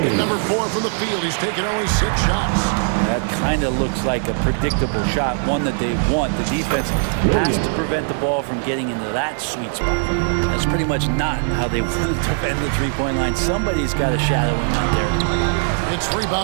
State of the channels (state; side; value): silent; left; 66 dB below the other